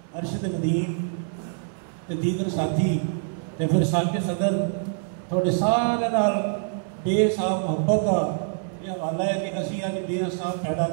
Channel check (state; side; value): silent; left; digital silence